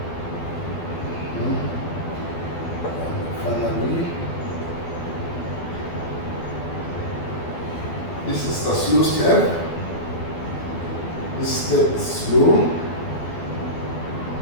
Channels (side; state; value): right; late; 12 ms